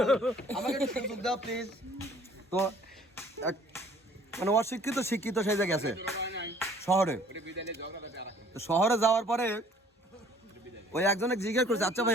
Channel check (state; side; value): normal; both; correlation 0.55